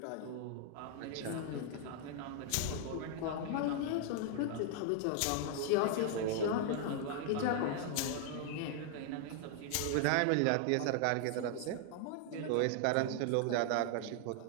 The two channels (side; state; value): both; different; correlation 0.00